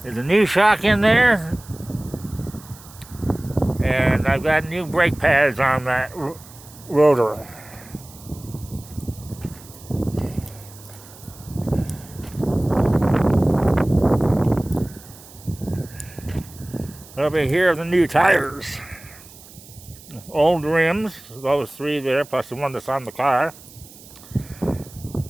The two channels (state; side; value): noise; right; hiss, 20 dB below the sound